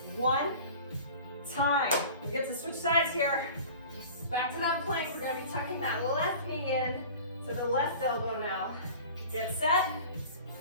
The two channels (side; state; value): both; inverted; correlation -0.40